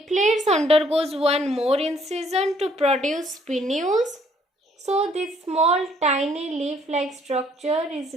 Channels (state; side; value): normal; both; correlation 0.64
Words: undergoes one more incision to produce pinnules. So this small tiny leaf-like structure is